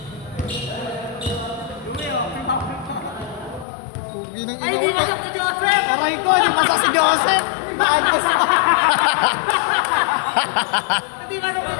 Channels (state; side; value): drops out; right; at 3.7 s